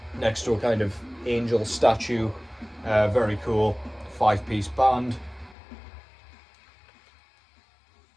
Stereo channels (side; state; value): right; drops out; at 5.6 s